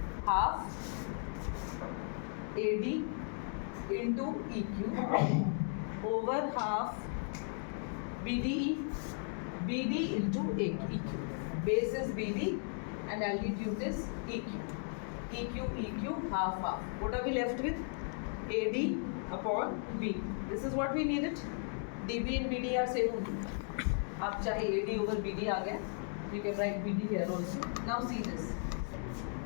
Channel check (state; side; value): silent; right; 54 dB below the other